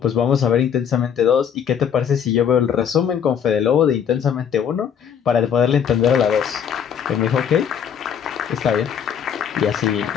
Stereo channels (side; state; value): right; quieter; 8.1 dB